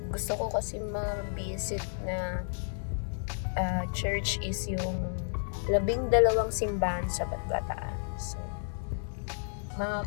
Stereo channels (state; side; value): silent; right; digital silence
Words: Gusto ko kasi ma-visit na church is yung 12 simbahan sa Bataan. So,